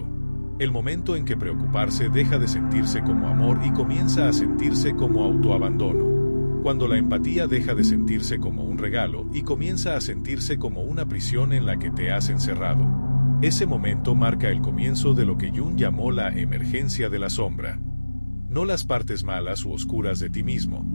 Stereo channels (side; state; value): both; inverted; correlation -1.00